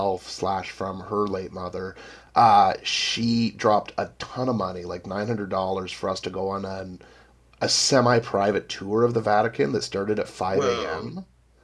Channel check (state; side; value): identical; both; correlation 1.00